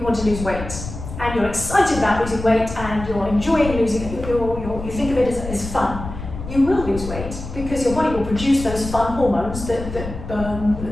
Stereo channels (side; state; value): left; noise; rumble, 9 dB below the sound